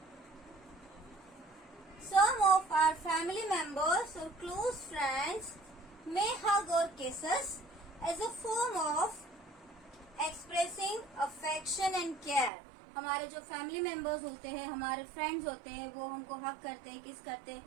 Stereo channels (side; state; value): left; drops out; at 12.5 s